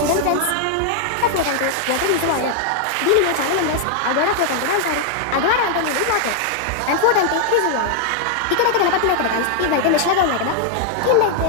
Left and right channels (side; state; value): both; different; correlation 0.00